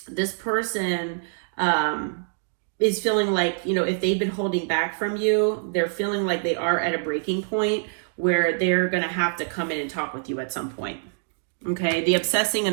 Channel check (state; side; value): silent; left; digital silence